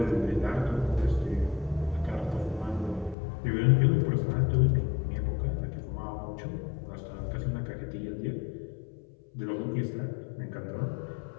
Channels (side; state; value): right; drops out; at 3.2 s